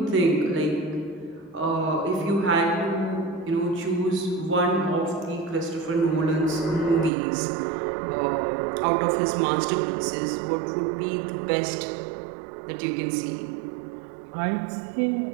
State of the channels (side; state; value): left; drops out; at 7.1 s